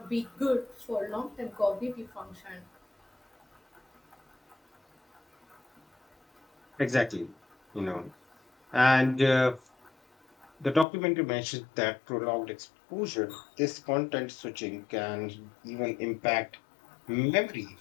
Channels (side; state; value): right; drops out; at 10.9 s